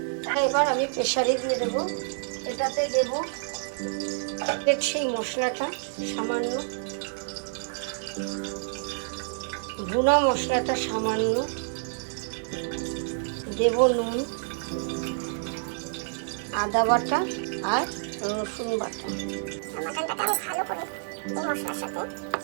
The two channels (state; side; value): silent; left; digital silence